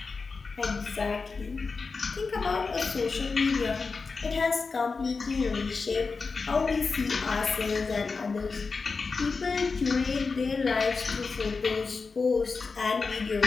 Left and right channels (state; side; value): quieter; right; 4.5 dB